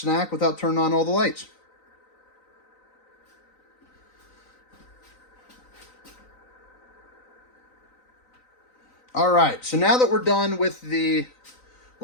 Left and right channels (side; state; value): right; late; 3.9 ms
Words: without turning on all the lights. All right, so now that we're done with the,